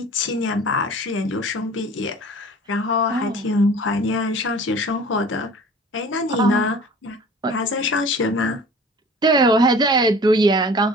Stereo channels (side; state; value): both; normal; correlation 0.45